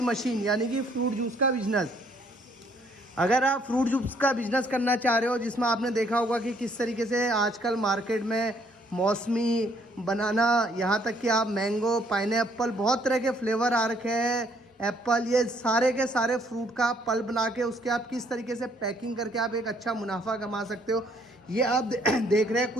यानी कि फ्रूट जूस का बिजनेस। अगर आप फ्रूट जूस का बिजनेस करना चाह रहे हो, जिसमें आपने देखा होगा कि किस तरीके से आजकल मार्केट में मौसमी, बनाना, यहाँ तक कि आप मैंगो, पाइनएप्पल, बहुत तरह के फ्लेवर आ रखे हैं, एप्पल, ये सारे के सारे फ्रूट का आप पल्प बना के उसके आप किस तरीके से पैकिंग करके आप एक अच्छा मुनाफा कमा सकते हो। ये आप देख रहे हैं,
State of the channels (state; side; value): normal; both; correlation 0.65